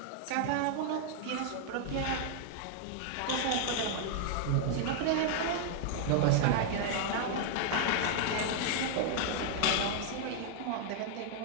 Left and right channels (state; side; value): different; both; correlation 0.00